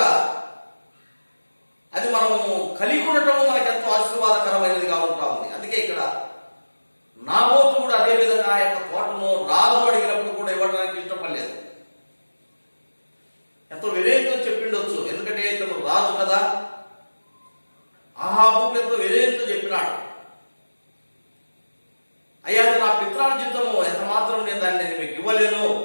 అది మనము కలిగి ఉండటము మనకు ఎంతో ఆశీర్వాదకరమైనదిగా ఉంటా ఉంది. అందుకే ఇక్కడ నాబోతు కూడా అదే విధంగా ఆ యొక్క తోటను రాజు అడిగినప్పుడు కూడా ఇవ్వడానికి ఇష్టపడలేదు. ఎంతో వినయంతో చెప్పిండొచ్చు, ఎందుకంటే ఇతను రాజు కదా. ఆహాబు ఎంతో వినయంతో చెప్పినాడు, అయ్యా నా పిత్రార్జితము ఎంత మాత్రం నేను దాన్ని మీకు ఇవ్వలేను.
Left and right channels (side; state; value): both; inverted; correlation -1.00